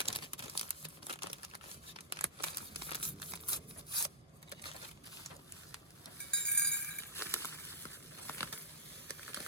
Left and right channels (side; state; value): both; normal; correlation -0.16